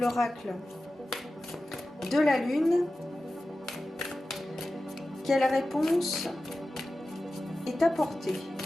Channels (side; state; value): both; normal; correlation 0.94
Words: de la lune quelle réponse est apportée,